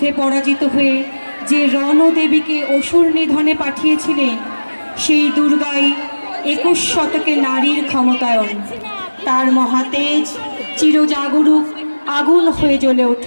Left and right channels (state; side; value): inverted; both; correlation -1.00